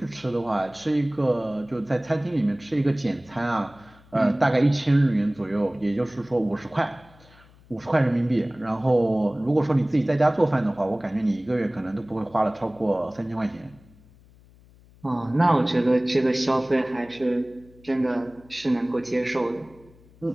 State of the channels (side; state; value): left; noise; hum, 26 dB below the sound